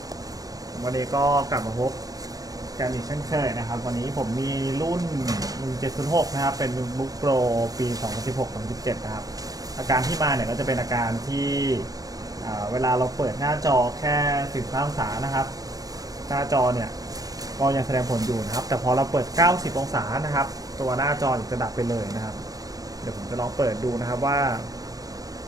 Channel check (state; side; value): late; left; 0.18 ms